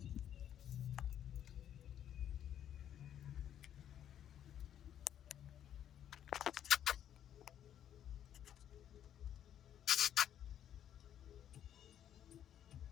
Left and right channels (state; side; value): quieter; right; 10.2 dB